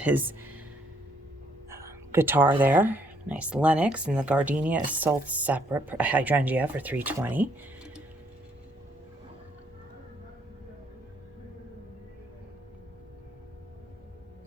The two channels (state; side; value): normal; both; correlation 0.69